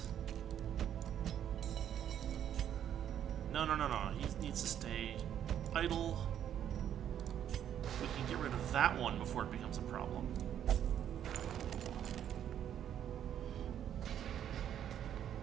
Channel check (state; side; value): quieter; left; 9.9 dB